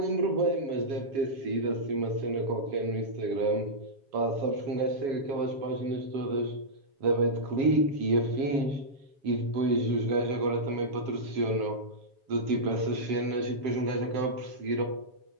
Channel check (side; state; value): left; late; 7.3 ms